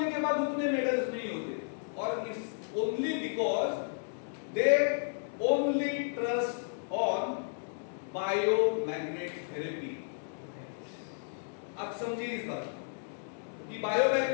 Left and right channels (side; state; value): right; silent; digital silence